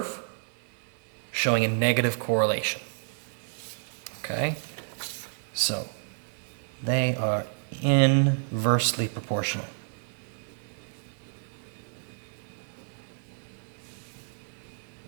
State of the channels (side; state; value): left; silent; 58 dB below the other